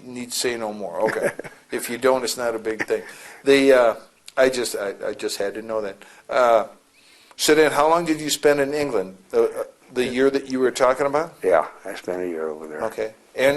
need to say no more. Okay. If you don't, it's not a big thing. I just had to know that. So then, how long did you spend in England? The year that you were talking about? yeah, I spent a year over there. Okay.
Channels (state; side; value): identical; both; correlation 1.00